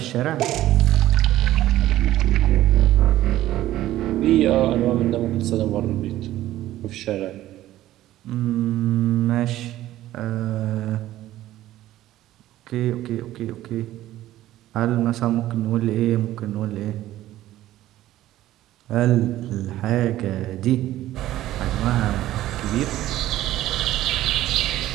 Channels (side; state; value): left; quieter; 14.4 dB